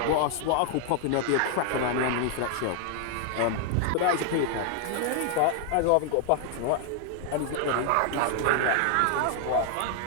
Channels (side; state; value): both; different; correlation 0.00